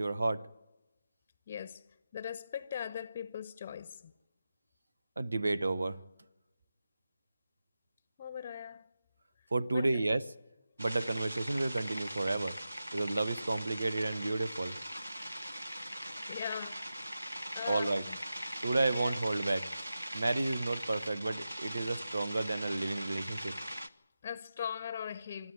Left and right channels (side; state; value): both; inverted; correlation -0.92